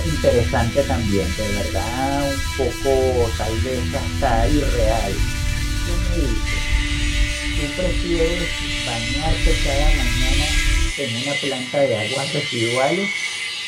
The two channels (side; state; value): both; identical; correlation 1.00